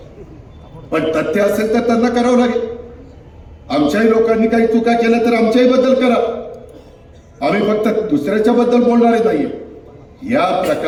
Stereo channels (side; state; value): both; identical; correlation 1.00